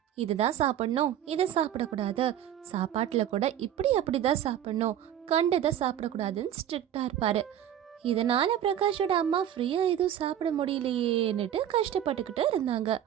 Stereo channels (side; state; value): left; quieter; 10.7 dB